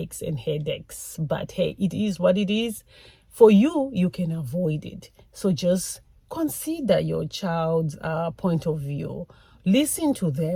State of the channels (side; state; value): both; identical; correlation 1.00